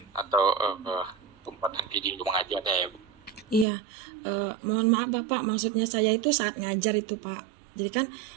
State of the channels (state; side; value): drops out; left; at 3.7 s